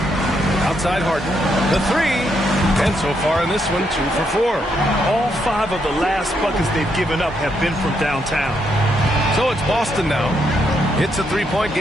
Outside Harden. The 3. And so far in this one, 2 for 4. All 5 of the last buckets they've given up have been from downtown. So it's Boston now. It's a 3-point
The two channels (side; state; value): both; normal; correlation 0.77